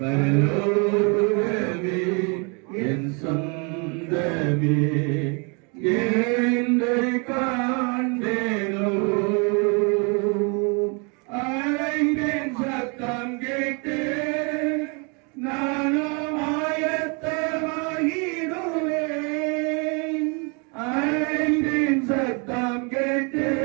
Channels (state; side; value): quieter; left; 33.8 dB